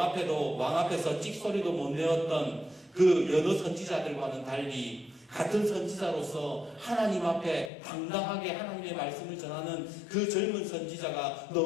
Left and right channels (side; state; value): right; drops out; at 7.7 s